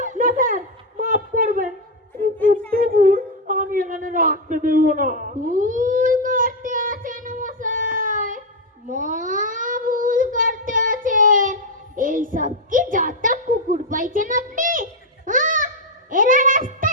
না স্যার, মাফ করবেন, কুকুর টুকুর আমি এখানে রাখতে দেবো না। ভুল করতে আছেন মশাই, ভুল করতে আছেন। এইসব কি যত কুকুর পাইছেন আপনি? হ্যাঁ, এরা রাস্তা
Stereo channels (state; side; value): normal; both; correlation 0.03